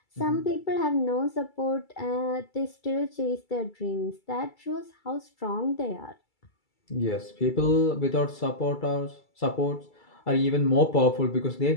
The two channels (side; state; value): right; late; 2.3 ms